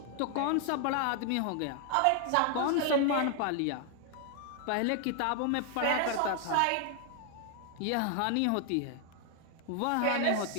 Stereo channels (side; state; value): both; different; correlation 0.00